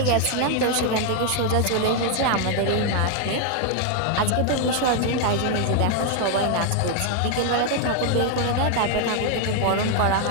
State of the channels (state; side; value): different; both; correlation 0.00